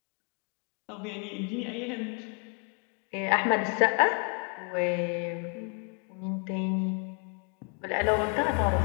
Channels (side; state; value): right; quieter; 38.8 dB